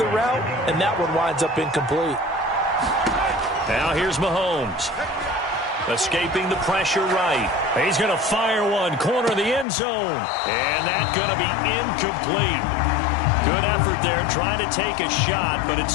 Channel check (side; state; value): right; drops out; at 9.7 s